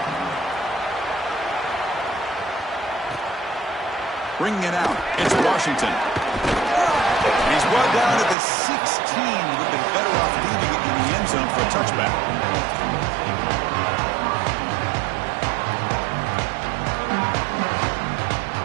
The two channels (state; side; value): drops out; left; at 8.3 s